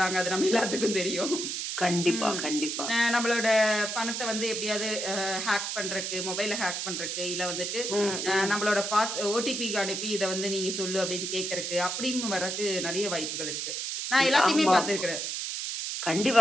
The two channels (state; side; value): noise; right; hiss, 3 dB below the sound